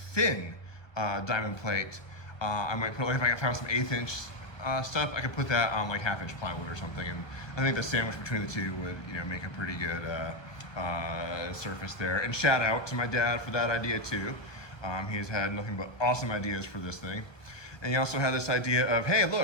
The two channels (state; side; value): late; right; 1.3 ms